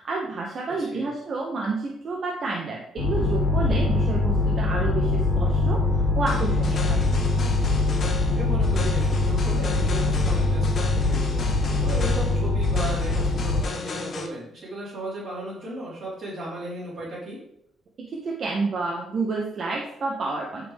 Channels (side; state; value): both; normal; correlation 0.56